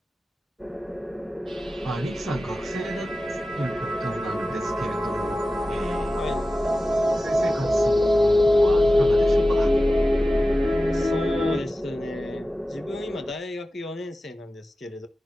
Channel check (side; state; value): both; normal; correlation 0.95